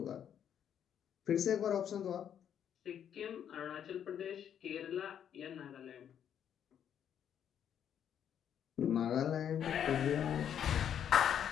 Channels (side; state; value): right; quieter; 9.1 dB